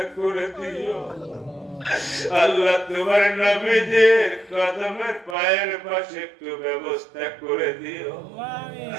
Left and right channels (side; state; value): left; drops out; at 5.4 s